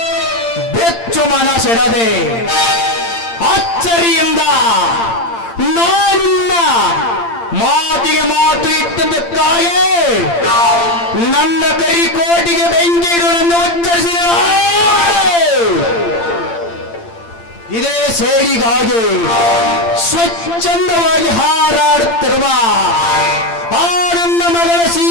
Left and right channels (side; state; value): right; late; 8.8 ms